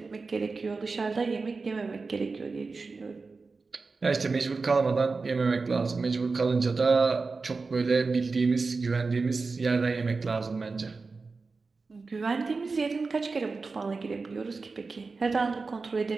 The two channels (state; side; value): quieter; left; 4.2 dB